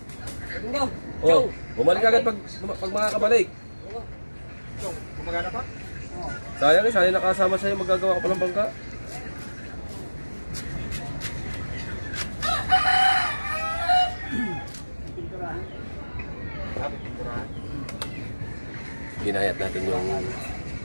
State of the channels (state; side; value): inverted; both; correlation -1.00